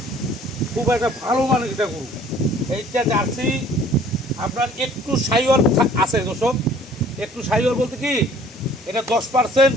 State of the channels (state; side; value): normal; both; correlation 0.54